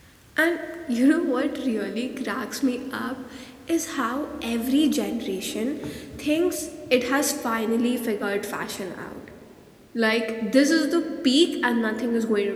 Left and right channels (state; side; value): identical; both; correlation 1.00